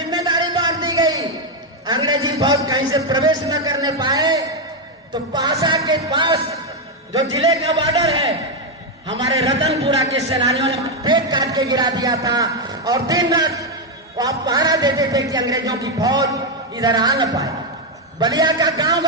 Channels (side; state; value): both; normal; correlation 0.04